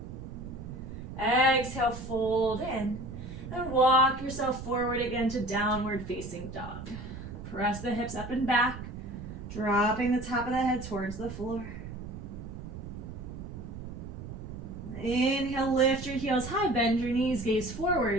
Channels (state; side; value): noise; right; rumble, 10 dB below the sound